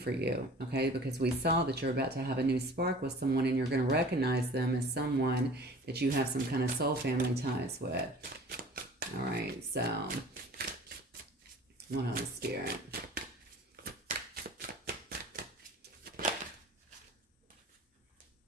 you, okay? Because we saw that you're about to have a new spark with someone, and you're going to recognize them as someone that you have some kind of soul family ties with. All right, so what else, Spirit?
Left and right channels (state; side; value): normal; both; correlation 0.44